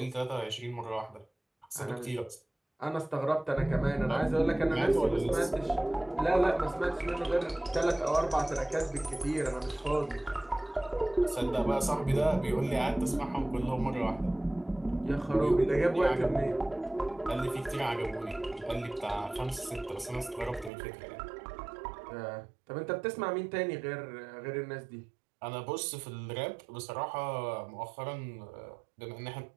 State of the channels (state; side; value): drops out; left; at 20.7 s